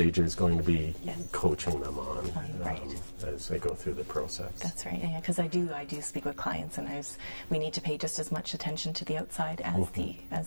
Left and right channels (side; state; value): both; inverted; correlation -1.00